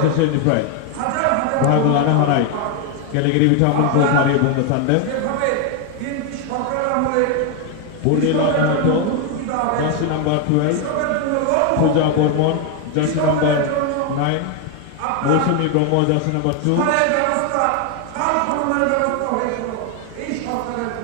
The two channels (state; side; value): different; both; correlation 0.01